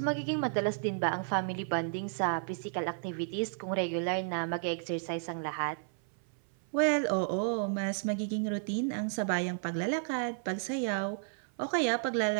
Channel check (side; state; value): left; silent; 56 dB below the other